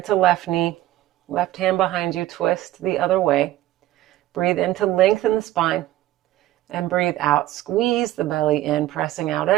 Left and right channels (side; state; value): left; quieter; 14.9 dB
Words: to left knee, left hand behind you, twist the other way. Breathe in to lengthen the spine, and breathe out. Squeeze the belly in, pressing out